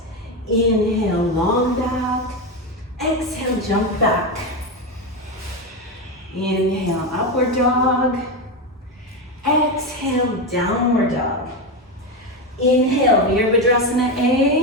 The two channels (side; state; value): both; normal; correlation 0.13